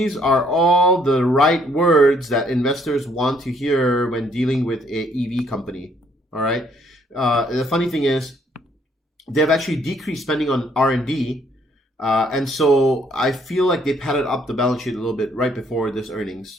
are all the right words that investors want to hear when dealing with a EV company. All right. The funny thing is, they've actually decreased spending on R&D, and so I feel like they padded up the balance sheet a little bit right before this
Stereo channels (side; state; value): both; normal; correlation 0.67